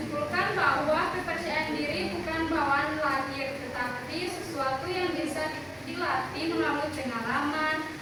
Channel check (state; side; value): identical; both; correlation 1.00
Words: bahwa kepercayaan diri bukan bawaan lahir, tetapi sesuatu yang bisa dilatih melalui pengalaman,